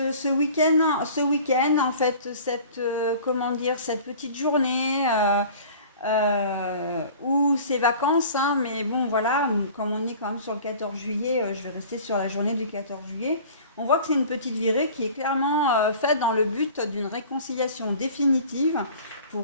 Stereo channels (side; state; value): both; inverted; correlation -0.44